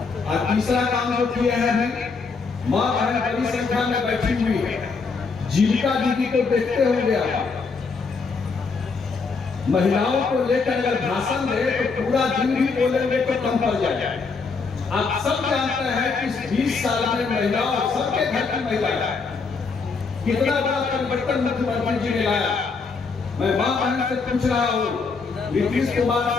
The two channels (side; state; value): right; quieter; 4.7 dB